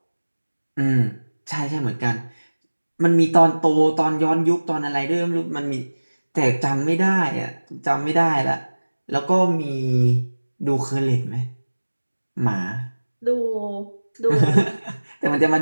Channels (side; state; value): both; inverted; correlation -1.00